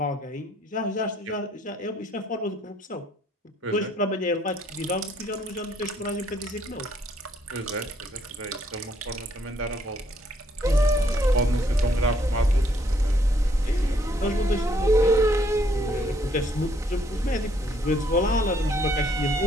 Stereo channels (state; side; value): normal; both; correlation 0.68